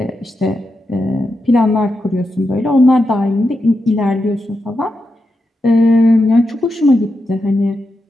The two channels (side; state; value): both; normal; correlation 0.87